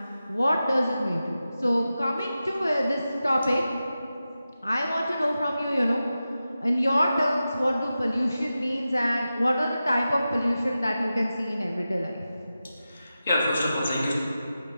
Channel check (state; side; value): inverted; both; correlation -0.93